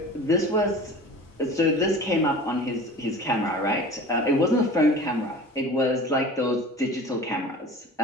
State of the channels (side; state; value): both; normal; correlation 0.39